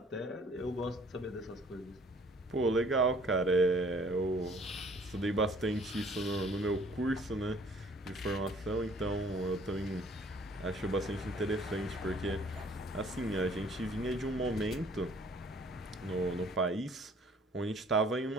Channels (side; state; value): both; normal; correlation 0.57